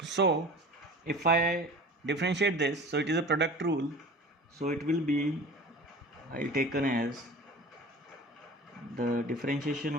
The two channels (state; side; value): normal; both; correlation 0.39